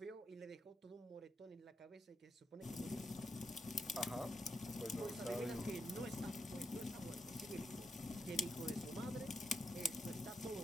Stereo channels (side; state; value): both; normal; correlation 0.82